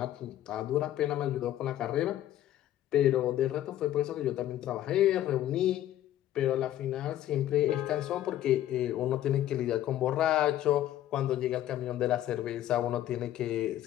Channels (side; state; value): right; quieter; 12.8 dB